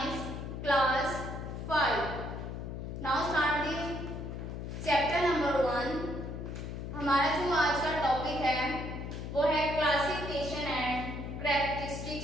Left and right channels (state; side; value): noise; left; hum, 6 dB below the sound